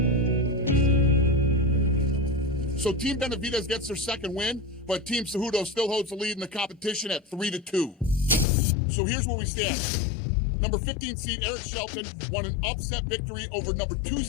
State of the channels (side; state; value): right; drops out; at 8.5 s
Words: So Team Benavidez gets their second win, but Team Cejudo still holds the lead in the competition at 3-2. So here's where we stand. Number 15 seed Eric Shelton won an upset victory over number 2